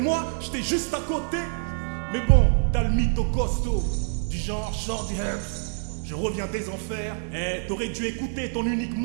j'étais juste à côté. Mais bon, t'as le mytho costaud, du genre Shorty Herbs. Je reviens des enfers, t'aurais dû écouter ton unique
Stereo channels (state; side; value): silent; left; 61 dB below the other